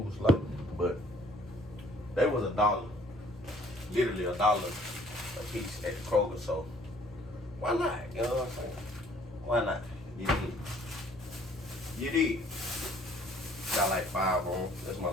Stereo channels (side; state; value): both; normal; correlation 0.58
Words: but they was $1. Literally $1 a piece at the Kroger, so why not? You know what I'm saying? Why not? You did. Got like 5 on. That's my